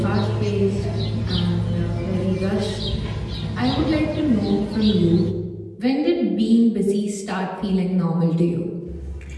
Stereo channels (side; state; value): both; identical; correlation 1.00